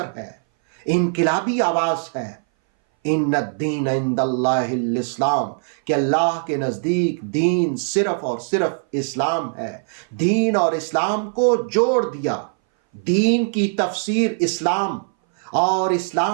ہے، انقلابی آواز ہے۔ ان الدین عند اللہ الاسلام، کہ اللہ کے نزدیک دین صرف اور صرف اسلام ہے۔ دین اور اسلام کو جوڑ دیا، دین کی تفسیر اسلام اور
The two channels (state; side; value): silent; left; 61 dB below the other